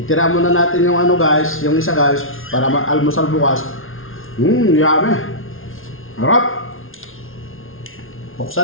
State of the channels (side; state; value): right; late; 0.60 ms